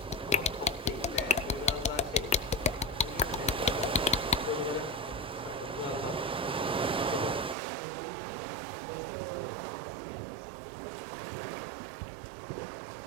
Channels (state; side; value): drops out; left; at 7.6 s